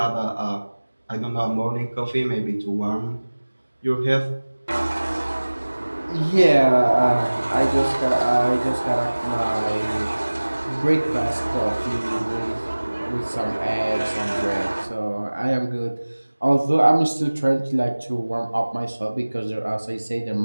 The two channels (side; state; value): both; inverted; correlation -1.00